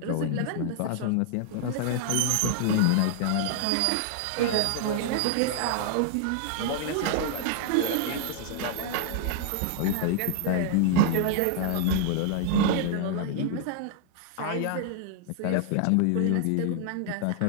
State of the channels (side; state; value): both; different; correlation 0.00